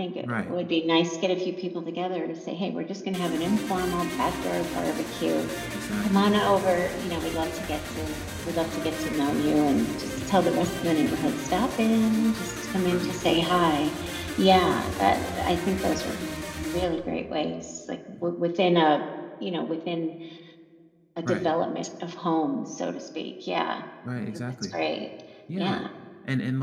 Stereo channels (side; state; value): both; identical; correlation 1.00